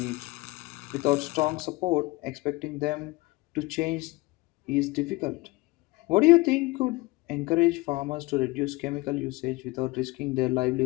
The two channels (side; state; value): right; quieter; 22.5 dB